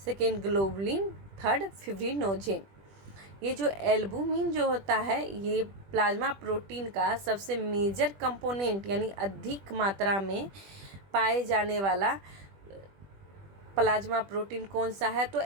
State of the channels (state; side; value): late; left; 20 ms